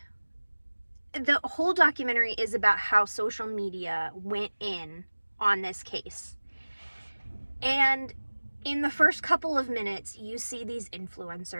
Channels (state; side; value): inverted; both; correlation -1.00